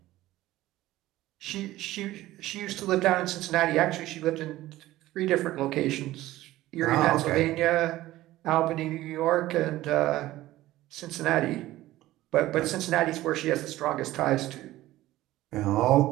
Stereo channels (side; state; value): left; quieter; 16.1 dB